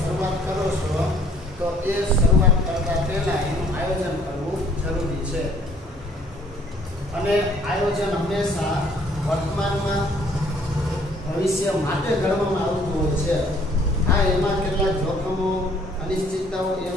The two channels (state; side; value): normal; both; correlation 0.60